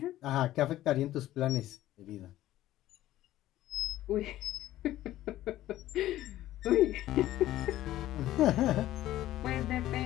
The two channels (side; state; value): right; quieter; 14.4 dB